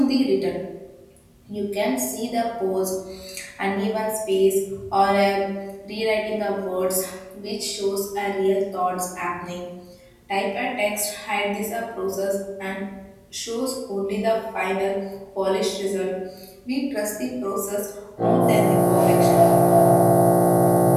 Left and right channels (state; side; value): identical; both; correlation 1.00